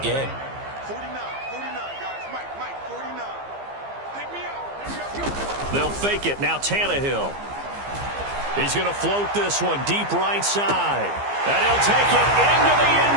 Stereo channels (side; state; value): left; late; 15 ms